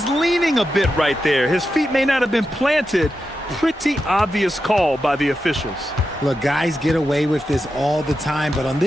leaning a bit right there. His feet may not have been planted. Pretty obvious call by the officials. Look, guys get away with this all the time, but on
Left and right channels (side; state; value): both; normal; correlation 0.89